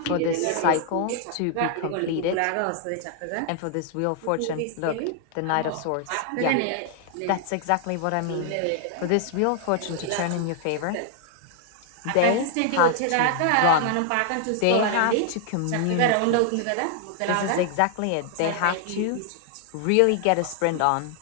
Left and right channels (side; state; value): both; different; correlation 0.00